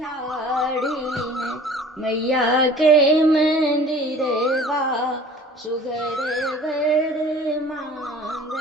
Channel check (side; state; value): both; normal; correlation 0.46